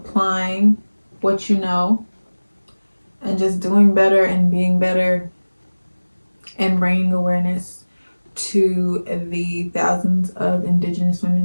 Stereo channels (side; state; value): both; inverted; correlation -1.00